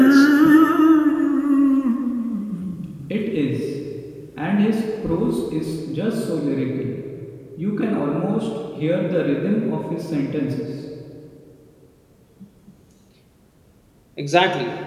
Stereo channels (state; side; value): identical; both; correlation 1.00